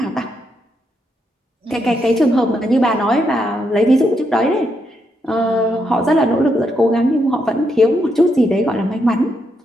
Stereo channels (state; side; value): normal; both; correlation 0.79